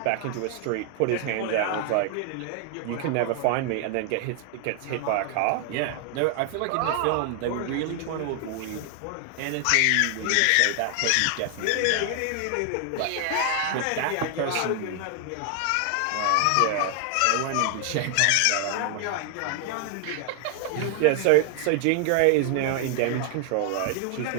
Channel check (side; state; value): both; different; correlation 0.00